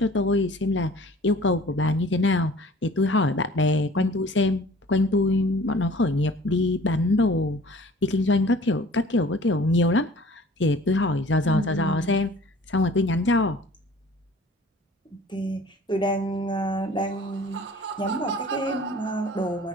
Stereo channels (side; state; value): both; normal; correlation 0.48